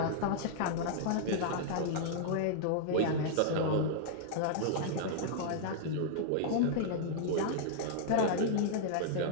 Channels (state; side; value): different; both; correlation -0.01